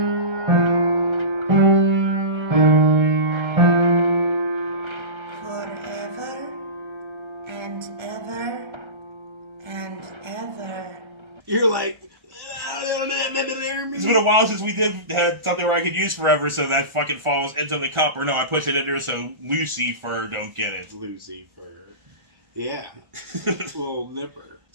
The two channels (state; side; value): late; left; 1.4 ms